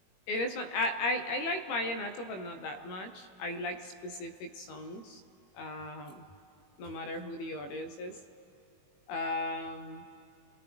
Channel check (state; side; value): late; right; 21 ms